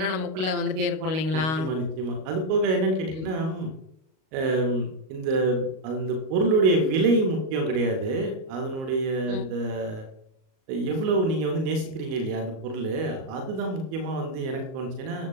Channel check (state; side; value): late; left; 38 ms